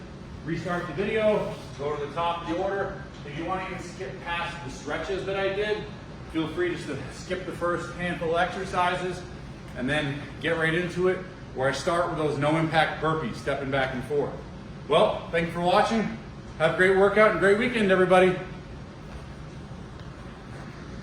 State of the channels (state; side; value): identical; both; correlation 1.00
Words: restart the video, go to the top of the order. If you want to even skip past the stretches that I did, feel free just to skip the first handful of exercises and then get right into it, where I start with those no impact burpees, stepping back and forth. Well, thank you for watching. Have a great workout and great weekend, everybody.